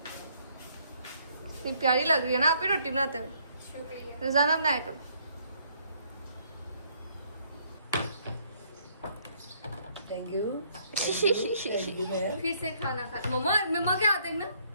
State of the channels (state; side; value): inverted; both; correlation -0.67